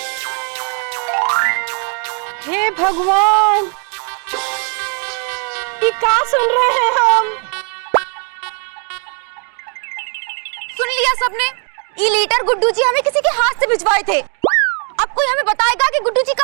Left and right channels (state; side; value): quieter; left; 39.3 dB